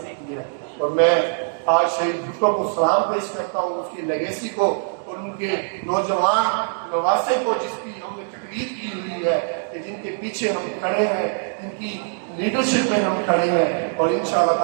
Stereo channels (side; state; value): left; silent; 64 dB below the other